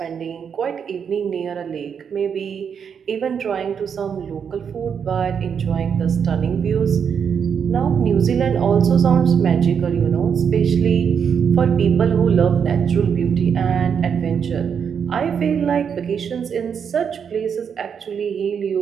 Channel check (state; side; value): quieter; left; 7.2 dB